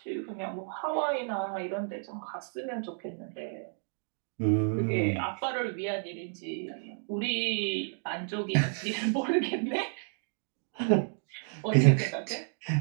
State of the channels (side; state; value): left; silent; 57 dB below the other